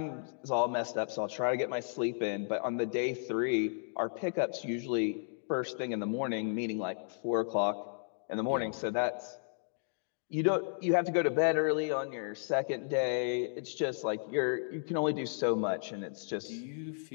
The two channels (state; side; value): silent; right; digital silence